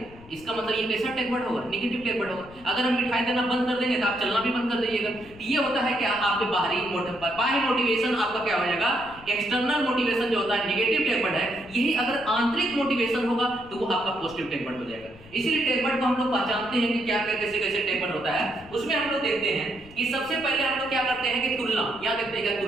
इसका मतलब ये कैसा टैग वर्ड होगा, नेगेटिव टैग वर्ड होगा। अगर हम मिठाई देना बंद कर देंगे तो आप चलना भी बंद कर दीजिएगा। ये होता है क्या, आपके बाह्य मोटिवेशन आपका क्या हो जाएगा, एक्सटर्नल मोटिवेशन जो होता है नेगेटिव टैग वर्ड है। यही अगर आंतरिक मोटिवेशन होगा तो वो आपका पॉजिटिव टैग वर्ड हो जाएगा। इसीलिए टैग वर्ड को हम लोग पहचानते हैं कि क्या क्या कैसे कैसे टैग वर्ड होता है। उसमें हम लोग देखते हैं कि सबसे पहले हम लोग क्या करते हैं कि तुलना, या देखते हैं क्या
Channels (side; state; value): left; noise; rumble, 21 dB below the sound